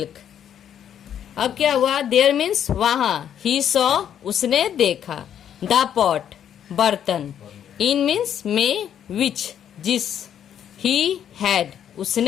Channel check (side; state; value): right; quieter; 9.5 dB